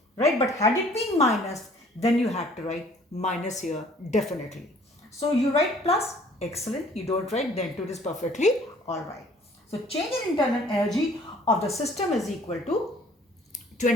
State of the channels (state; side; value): normal; both; correlation 0.55